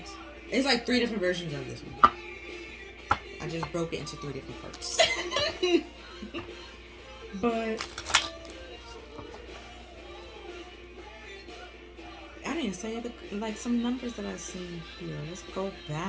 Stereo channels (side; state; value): both; identical; correlation 1.00